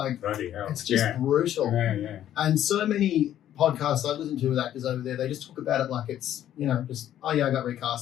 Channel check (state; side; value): quieter; right; 11.5 dB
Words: it's just brutal. Yeah. And so many podcasts I listen to with actors over there, they just talk about it like it's, you know, just, oh yeah, I got